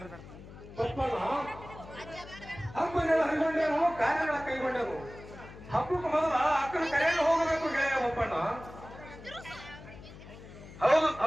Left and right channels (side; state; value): left; noise; hum, 16 dB below the sound